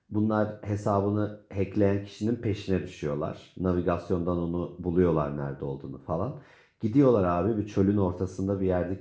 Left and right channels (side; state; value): both; identical; correlation 1.00